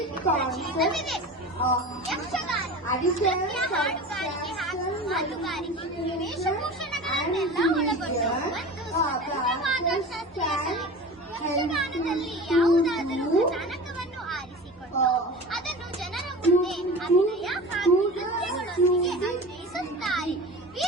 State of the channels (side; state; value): both; normal; correlation 0.34